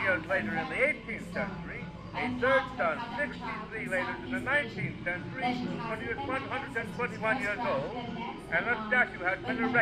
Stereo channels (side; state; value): both; identical; correlation 1.00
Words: later in the 18th century, a third son 63 later in the 19th century, when he was 121 years old, and a statue has been